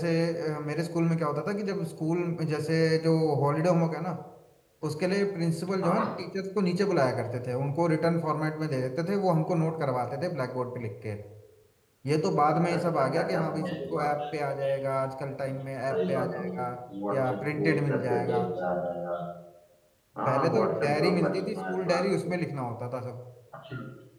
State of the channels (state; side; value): identical; both; correlation 1.00